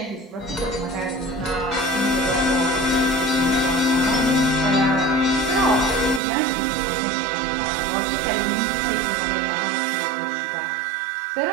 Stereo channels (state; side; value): drops out; left; at 6.2 s